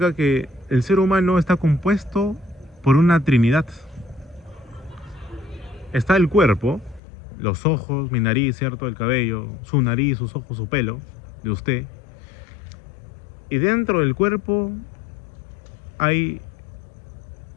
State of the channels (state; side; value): drops out; right; at 7.0 s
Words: que el ser humano está compuesto por una trinidad. Está el cuerpo, los ojos, mi nariz, ¿cierto? El cabello, su nariz, sus ojos, su pelo, de usted. Y dentro del cuerpo hay